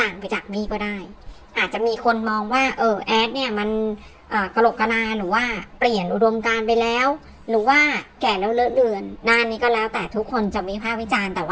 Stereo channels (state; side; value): identical; both; correlation 1.00